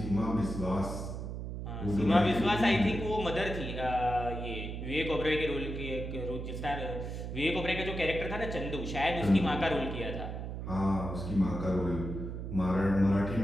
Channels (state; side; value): noise; right; hum, 6 dB below the sound